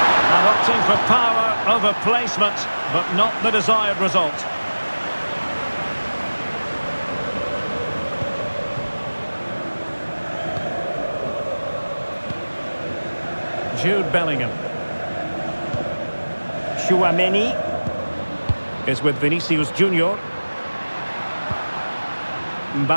And opting for power over placement, but not the desired result. Jude Bellingham. Tchouaméni is with Vinicius Junior.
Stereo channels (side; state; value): both; inverted; correlation -1.00